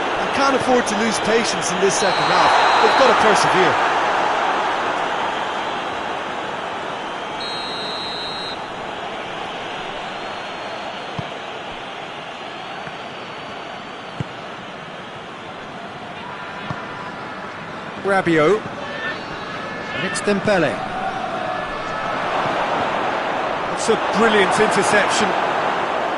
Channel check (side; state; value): both; identical; correlation 1.00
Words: can't afford to lose patience in this second half. They've got to persevere. Rabiot. And it's Dembele. It's a brilliant interception.